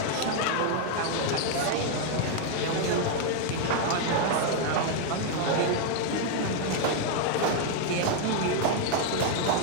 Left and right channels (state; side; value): different; both; correlation 0.01